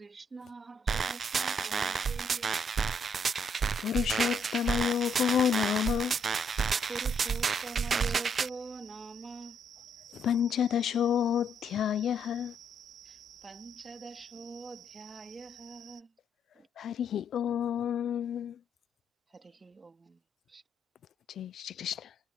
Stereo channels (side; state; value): both; normal; correlation 0.73